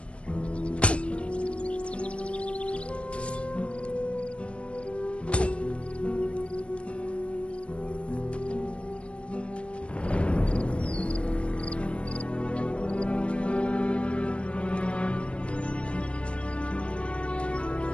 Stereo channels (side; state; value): right; late; 0.060 ms